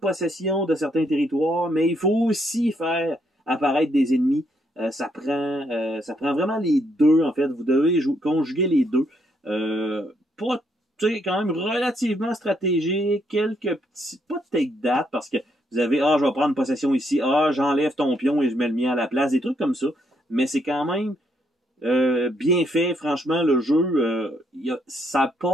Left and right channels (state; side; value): normal; both; correlation 0.73